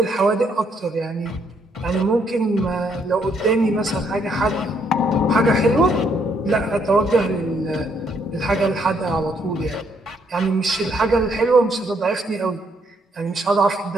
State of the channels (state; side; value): normal; both; correlation 0.71